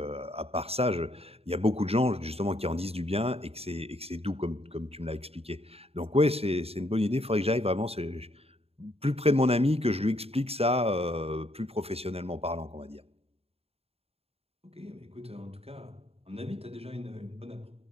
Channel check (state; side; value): late; left; 0.29 ms